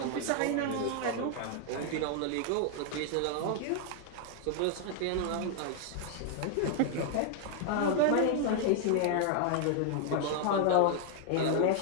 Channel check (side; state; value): both; different; correlation 0.00